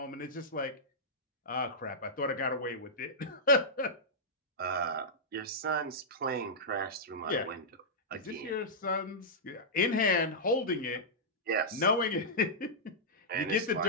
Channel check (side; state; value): both; normal; correlation -0.10